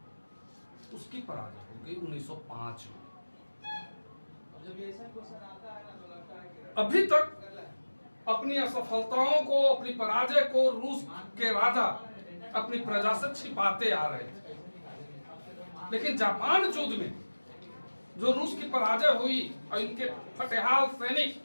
उसकी पराजय हो गई 1905 में। अभी तक अपनी असफलताओं को, अपनी पराजय को रूस के राजा अपनी प्रजा से छिपाते आ रहे थे। लेकिन जापान युद्ध में जो रूस की पराजय हुई और इनके फटेहाल सैनिक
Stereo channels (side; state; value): both; inverted; correlation -1.00